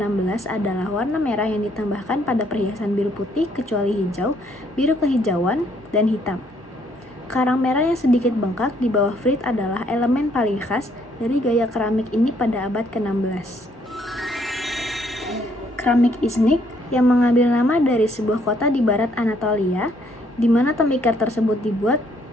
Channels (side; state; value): both; normal; correlation 0.67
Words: adalah warna merah yang ditambahkan pada perhiasan biru putih kecuali hijau, biru kehijauan, dan hitam. Karang merah yang sedikit bengkak di bawah frit adalah elemen paling khas dari gaya keramik ini pada abad ke-16. Keramik Iznik yang mengambil nama dari sebuah kota di barat Anatolia, di mana tembikar tersebut dibuat,